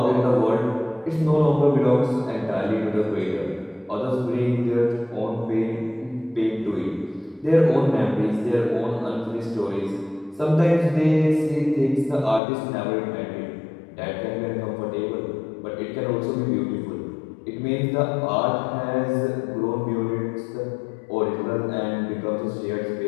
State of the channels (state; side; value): drops out; right; at 12.4 s